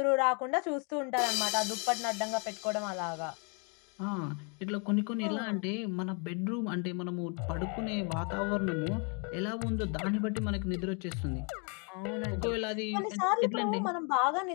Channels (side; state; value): right; quieter; 36.3 dB